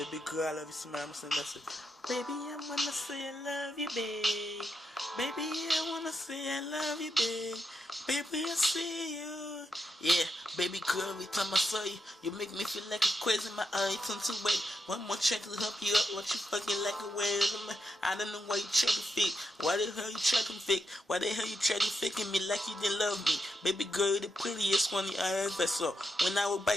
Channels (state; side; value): normal; both; correlation 0.84